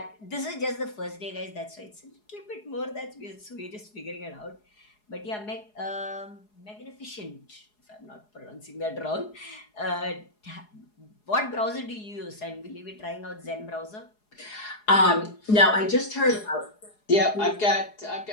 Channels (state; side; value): late; right; 4.8 ms